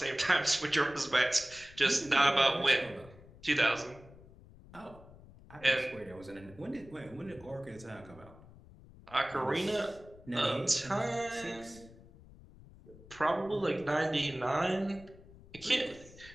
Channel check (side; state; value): left; noise; rumble, 21 dB below the sound